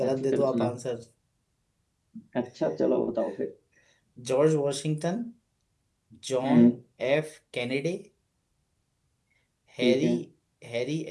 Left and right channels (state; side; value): identical; both; correlation 1.00